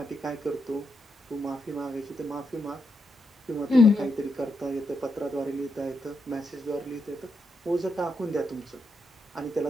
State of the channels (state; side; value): normal; both; correlation 0.83